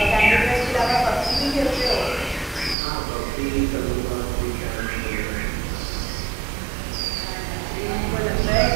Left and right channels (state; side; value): drops out; left; at 2.8 s